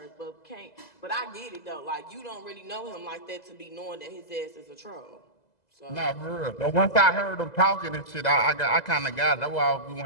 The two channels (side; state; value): right; late; 2.0 ms